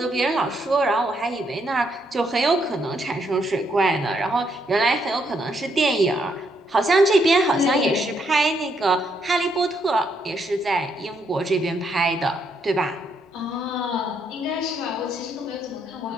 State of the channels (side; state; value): both; normal; correlation 0.75